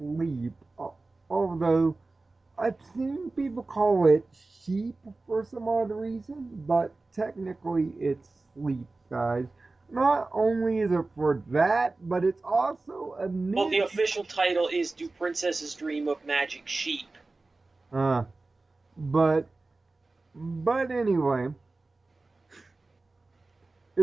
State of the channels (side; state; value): left; quieter; 3.4 dB